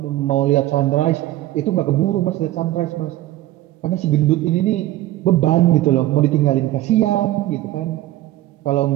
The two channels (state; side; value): quieter; left; 15.5 dB